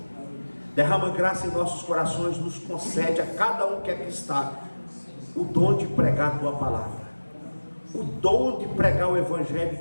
Derrama graça em nossos corações, nos concede a cada um que aqui está o dom de pregar a tua palavra, o dom de pregar o evangelho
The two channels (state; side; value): inverted; both; correlation -1.00